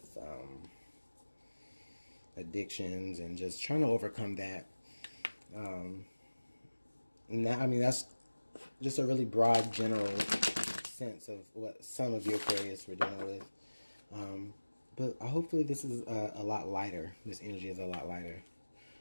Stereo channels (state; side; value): inverted; both; correlation -1.00